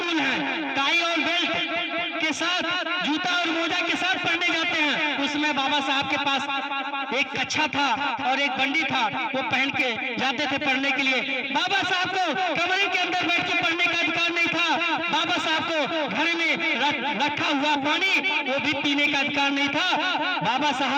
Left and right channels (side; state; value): both; identical; correlation 1.00